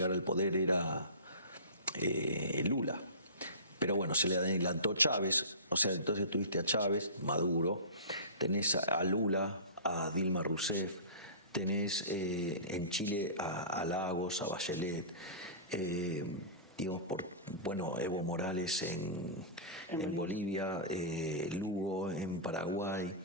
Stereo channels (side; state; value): both; inverted; correlation -0.32